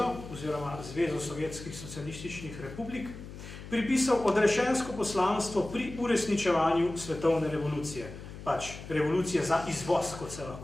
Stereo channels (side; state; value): left; noise; hum, 13 dB below the sound